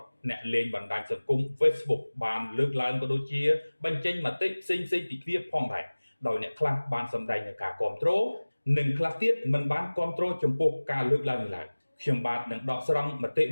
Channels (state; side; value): inverted; both; correlation -1.00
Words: អ្នកលេងបណ្ដាញសង្គម Facebook បានលើកឡើងក៏ដូចជាបញ្ចេញមតិផ្សេងៗពីគ្នាផងដែរដោយអ្នកខ្លះបានសម្ដែងនូវការគាំទ្រនិងខ្លះទៀតមិនបានគាំទ្រចំពោះការលើកឡើងនេះឡើយខ្ញុំបាទនឹងដកស្រង់មតិ